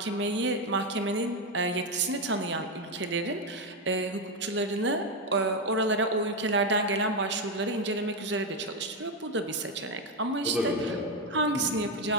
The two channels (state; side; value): normal; both; correlation 0.07